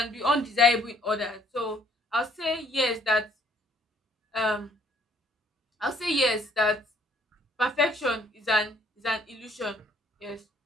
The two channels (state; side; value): normal; both; correlation 0.63